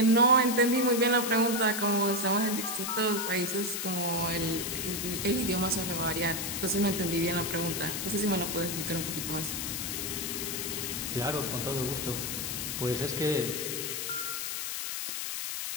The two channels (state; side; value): noise; left; hiss, 3 dB below the sound